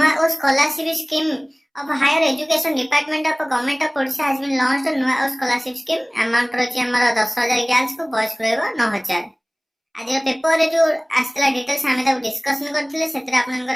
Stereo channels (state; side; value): identical; both; correlation 1.00